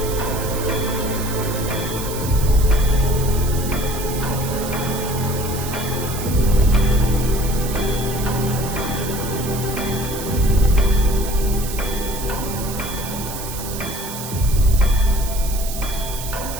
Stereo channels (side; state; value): right; noise; hiss, 9 dB below the sound